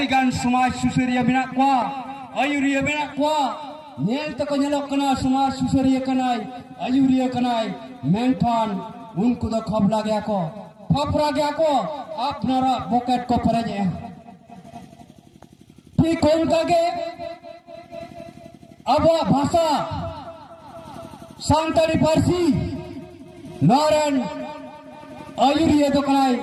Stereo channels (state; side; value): identical; both; correlation 1.00